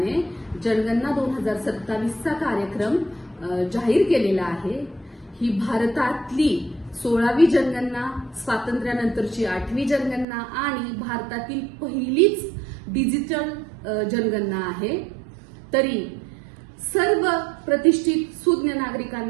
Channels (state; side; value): drops out; left; at 10.2 s